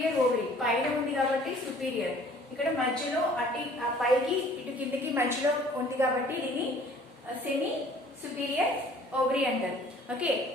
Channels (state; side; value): normal; both; correlation 0.53